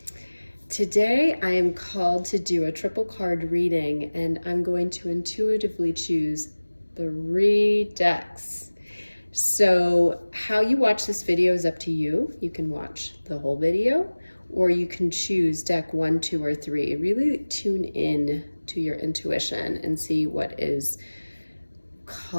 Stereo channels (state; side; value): inverted; both; correlation -1.00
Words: Today I am called to do a triple card reading, and I'm going to intuitively choose 3 decks. So how you watch this video is up to you. You can watch the whole video, or you can choose deck 1, 2, or 3. Really tune in to your intuition and see what is